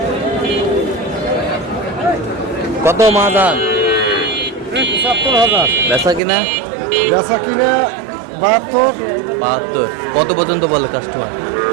কত মাদান? 70,000। বেচা কিনা? বেচা কিনে 72। 72। কত পর্যন্ত বলে কাস্টমার?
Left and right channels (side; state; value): left; drops out; at 6.2 s